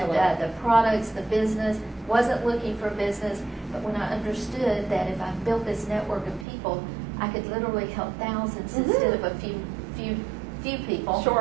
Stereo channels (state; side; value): drops out; left; at 6.5 s